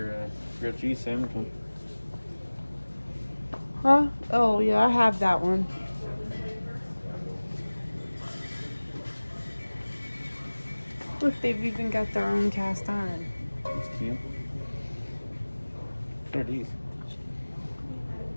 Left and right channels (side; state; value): both; inverted; correlation -1.00